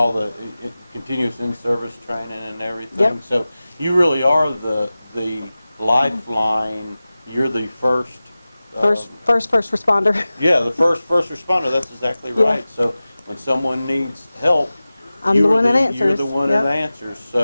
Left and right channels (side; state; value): both; inverted; correlation -0.97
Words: the continuous in-service training and everything. Yep. So you really are the lifeline. You're the first First responder. Yeah, the first responder. That's exactly right. Yeah. So when someone needs help, I'm the one that answers. You're the one Yep. that answers.